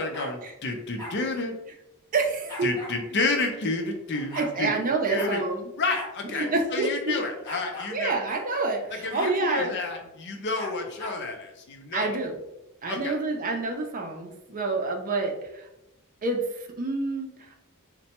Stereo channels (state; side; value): normal; both; correlation 0.08